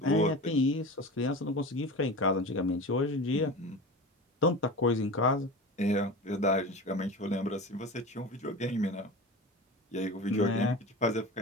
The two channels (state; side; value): normal; both; correlation 0.31